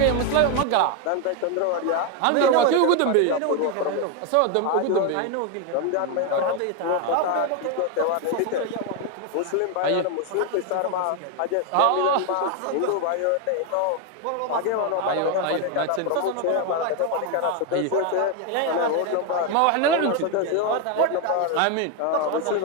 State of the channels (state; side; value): different; both; correlation 0.01